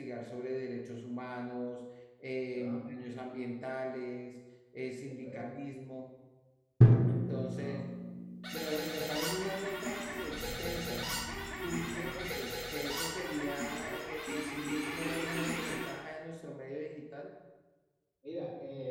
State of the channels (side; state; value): both; identical; correlation 1.00